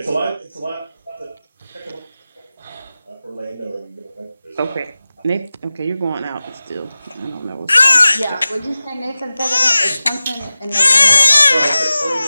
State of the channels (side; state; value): both; inverted; correlation -0.96